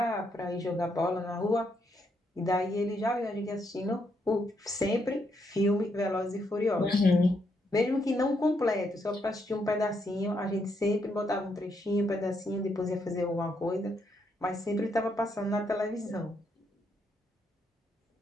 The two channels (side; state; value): both; normal; correlation 0.77